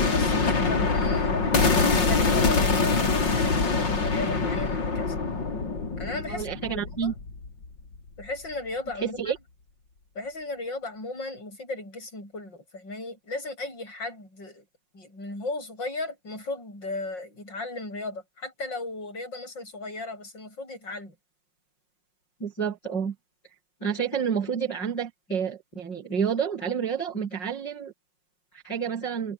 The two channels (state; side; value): late; right; 5.5 ms